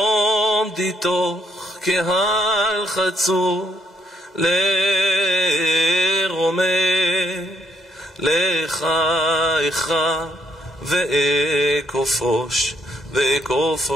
תוך קהל חצור לרומם לך איכה ואכופוש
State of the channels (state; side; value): normal; both; correlation 0.72